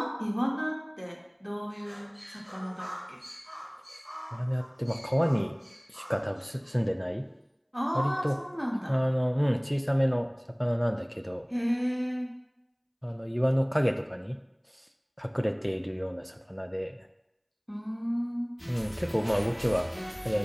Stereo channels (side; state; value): both; identical; correlation 1.00